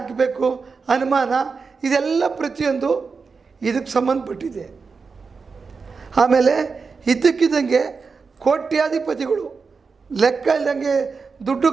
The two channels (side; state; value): left; quieter; 4.9 dB